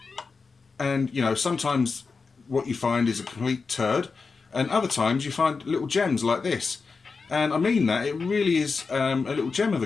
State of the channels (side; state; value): right; quieter; 4.6 dB